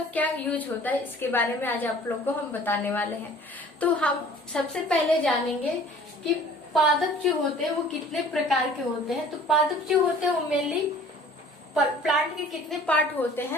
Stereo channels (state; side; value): normal; both; correlation 0.50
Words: क्या यूज होता है, इसके बारे में आज आप लोग को हम बताने वाले हैं। तो हम सबसे पहले जानेंगे कि पादप जो होते हैं वो कितने प्रकार के होते हैं। तो पादप जो होते हैं वो मेनली प्लांट के कितने पार्ट होते